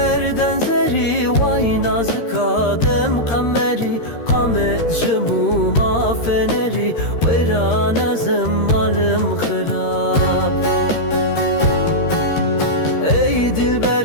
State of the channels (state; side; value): late; right; 13 ms